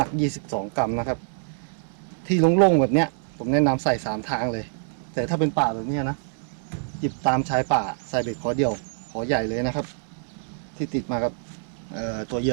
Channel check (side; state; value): left; silent; 61 dB below the other